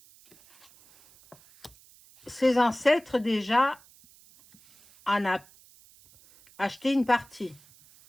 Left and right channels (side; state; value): right; noise; hiss, 27 dB below the sound